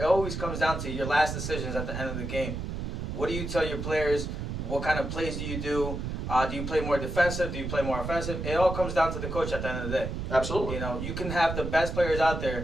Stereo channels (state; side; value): noise; right; rumble, 4 dB below the sound